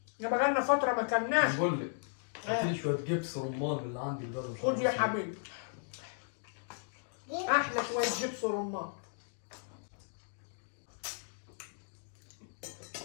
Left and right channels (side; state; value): right; silent; digital silence